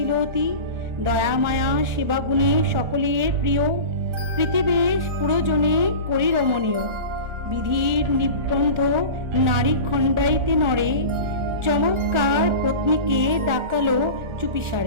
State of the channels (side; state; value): left; late; 1.4 ms